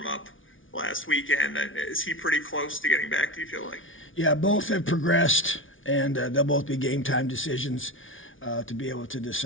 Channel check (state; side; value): late; right; 0.57 ms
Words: last weekend. Is he pretty close to getting back, do you feel like? Yeah, both have progressed, and they'll both be game time decisions to be able to